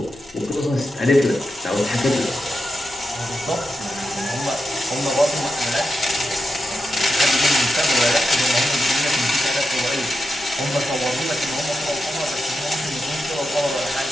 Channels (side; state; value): left; noise; hum, 26 dB below the sound